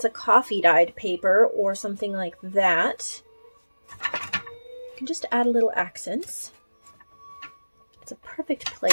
a coffee dyed paper or something like that, you can just add a little accents. It's a perfect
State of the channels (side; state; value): both; inverted; correlation -1.00